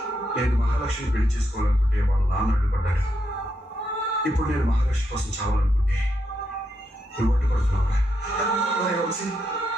నేను మహాలక్ష్మిని పెళ్లి చేసుకోవాలనుకుంటే వాళ్ళ నాన్న అడ్డుపడ్డాడు. ఇప్పుడు నేను మహాలక్ష్మి కోసం చావాలనుకుంటే నువ్వు అడ్డుపడుతున్నావురా? వంశీ,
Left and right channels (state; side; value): normal; both; correlation 0.81